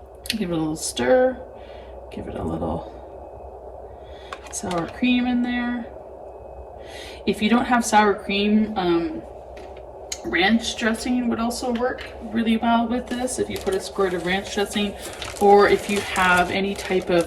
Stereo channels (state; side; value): identical; both; correlation 1.00